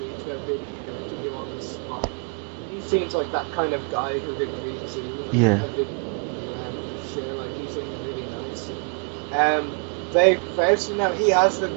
to a video interview on the spot. seems like that kind of guy who'd agree to. Yeah. Share, like he seems really nice. Dave Faust, he has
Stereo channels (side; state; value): left; quieter; 39.5 dB